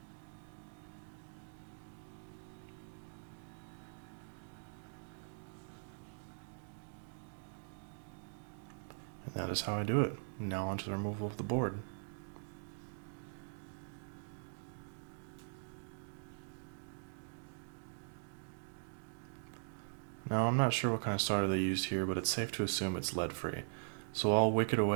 And that is how I do it. Now onto the removal of the board. Now I'm not sure what kind of solder they used here, but it's safe to assume it's lead free. So I'll wick it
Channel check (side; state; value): left; silent; digital silence